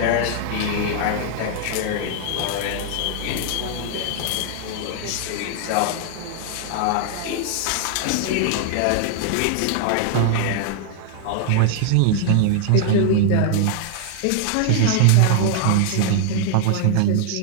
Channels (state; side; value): different; both; correlation 0.00